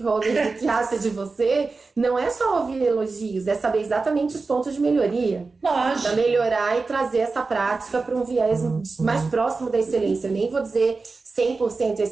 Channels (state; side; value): quieter; left; 4.0 dB